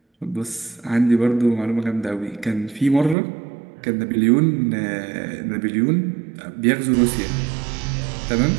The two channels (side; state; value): left; drops out; at 3.2 s